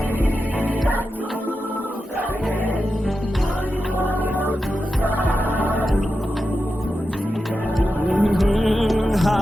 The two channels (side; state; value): both; normal; correlation 0.90